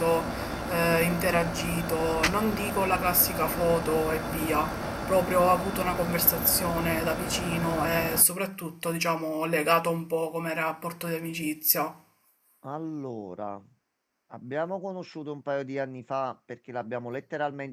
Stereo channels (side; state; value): both; identical; correlation 1.00